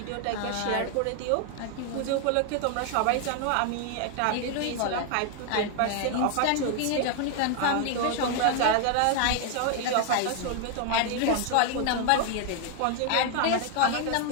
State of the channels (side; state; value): both; different; correlation 0.00